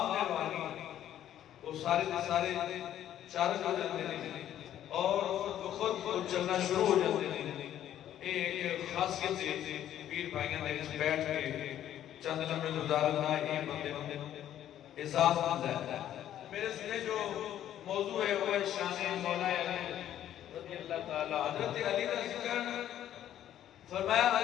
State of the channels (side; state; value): right; quieter; 11.4 dB